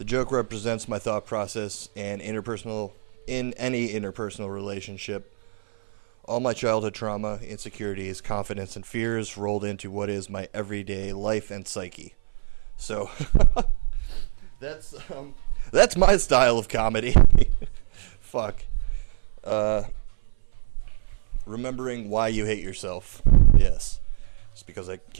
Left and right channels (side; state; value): left; silent; 58 dB below the other